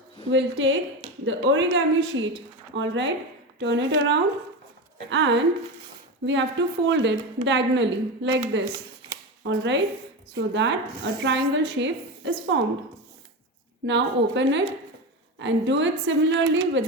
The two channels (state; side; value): normal; both; correlation 0.20